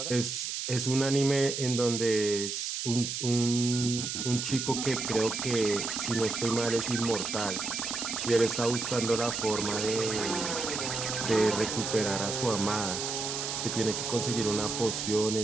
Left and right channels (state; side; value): noise; right; hiss, 3 dB below the sound